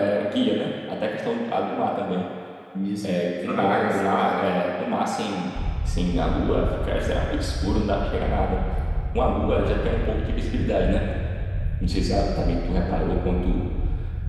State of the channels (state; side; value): identical; both; correlation 1.00